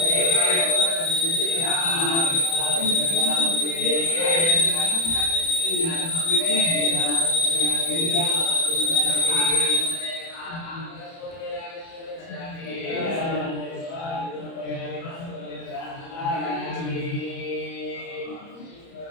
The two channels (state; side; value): late; right; 30 ms